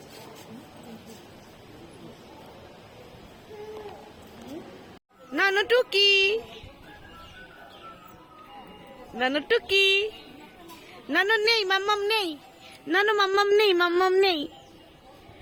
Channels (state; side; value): identical; both; correlation 1.00